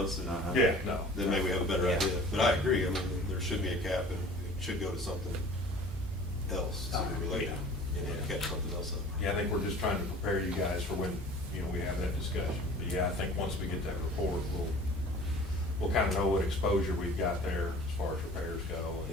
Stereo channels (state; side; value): normal; both; correlation 0.46